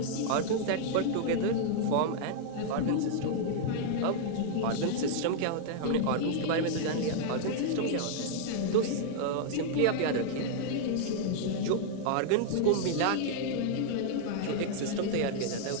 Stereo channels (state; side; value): different; both; correlation -0.01